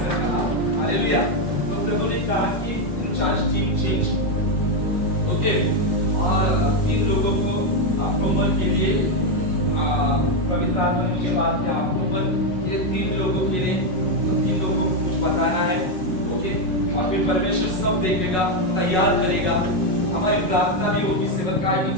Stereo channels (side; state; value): right; late; 5.4 ms